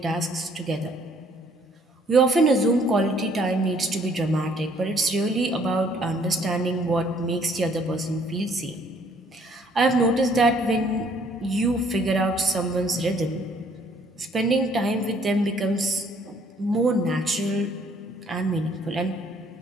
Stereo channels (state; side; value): normal; both; correlation 0.62